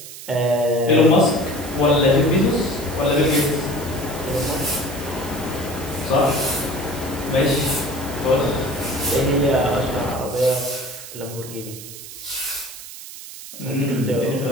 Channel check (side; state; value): right; noise; hiss, 13 dB below the sound